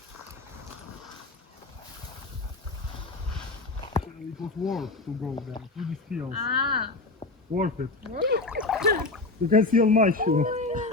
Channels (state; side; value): quieter; right; 3.4 dB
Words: It was worth to go there through these fields. Worth it. You can see on my shoe.